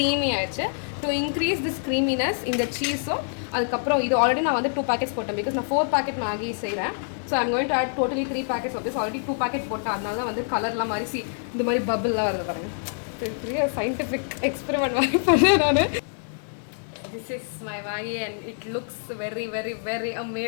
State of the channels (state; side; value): silent; right; digital silence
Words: ஆயிடுச்சு. டு இன்க்ரீஸ் திஸ் க்ரீமினஸ் இந்த சீஸும் அதுக்கப்புறம் இது ஆல்ரெடி நான் வந்து 2 packets போட்டேன். பிகாஸ் நான் 4 packet மேகி செய்கிறேன். So I'm going to add totally 3 packets of this. Already 2 packet போட்டேன். அதனால வந்து கலர்லாம் மாதிரி இந்த மாதிரி பபிள்லாம் வருது பாருங்கள். சயின்டிஃபிக் எக்ஸ்பெரிமெண்ட் மாதிரி பண்ணேன் நான். This is my Maggi and it looks very